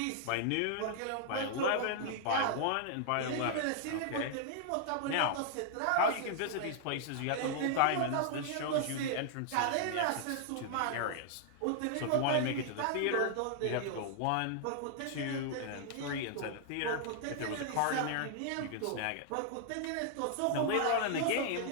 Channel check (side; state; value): both; different; correlation -0.01